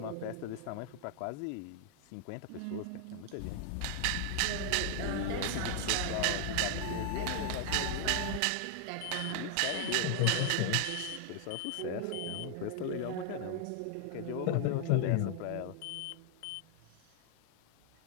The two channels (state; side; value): different; both; correlation 0.00